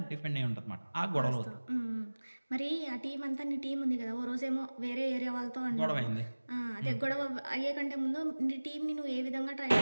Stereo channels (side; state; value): both; inverted; correlation -1.00